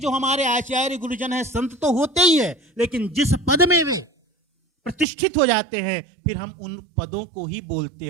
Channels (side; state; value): left; drops out; at 5.1 s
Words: हमारे आचार्य गुरुजन हैं, संत तो होते ही है, लेकिन जिस पद में वे प्रतिष्ठित हो जाते हैं फिर हम उन पदों को ही बोलते